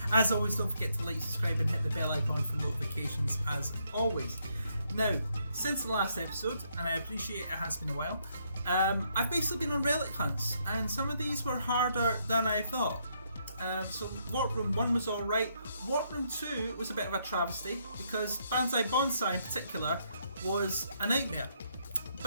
As always, don't forget to like, subscribe and hit the bell icon for notifications as always. Now, since the last episode, and I appreciate it has been a while, I've basically been on relic hunts, and some of these were harder than I thought. So Warp Room 1 was alright. Warp Room 2 was a bit of a travesty because Banzai Bonsai in particular was a nightmare.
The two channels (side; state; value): both; inverted; correlation -0.74